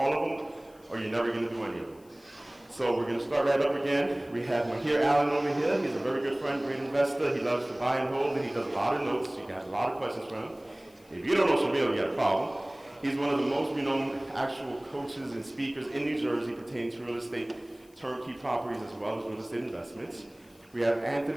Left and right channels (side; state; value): left; noise; hiss, 30 dB below the sound